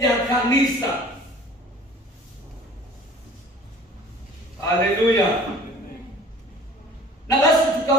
kanisa. Haleluya. Na basi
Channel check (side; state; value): both; normal; correlation 0.48